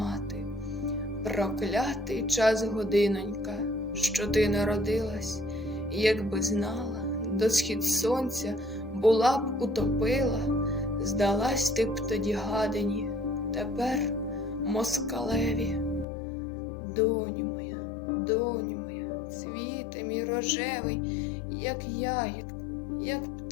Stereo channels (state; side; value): drops out; right; at 16.1 s